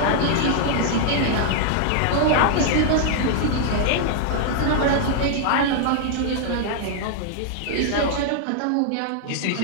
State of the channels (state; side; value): different; both; correlation 0.00